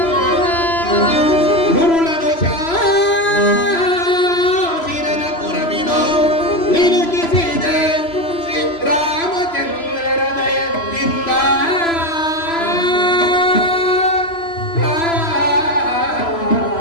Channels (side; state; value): right; late; 3.0 ms